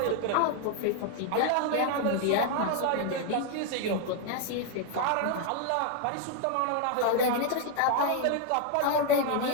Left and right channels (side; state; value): both; different; correlation 0.00